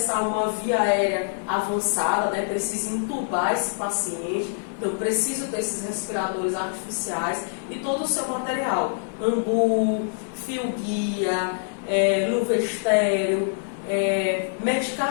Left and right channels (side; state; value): right; silent; digital silence